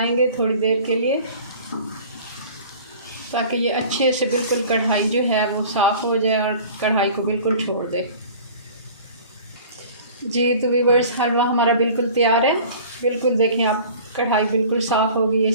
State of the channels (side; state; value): both; inverted; correlation -0.45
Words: थोड़ी देर के लिए, ताकि ये अच्छे से बिल्कुल कढ़ाई जो है वो साफ़ हो जाए और कढ़ाई को बिल्कुल छोड़ दे। जी तो व्यूअर्स, हलवा हमारा बिल्कुल तैयार है। बिल्कुल देखें आप, कढ़ाई बिल्कुल साफ़ हो गई है,